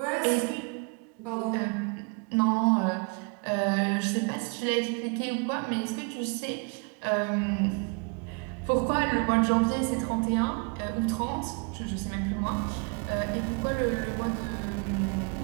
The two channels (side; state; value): left; quieter; 33.4 dB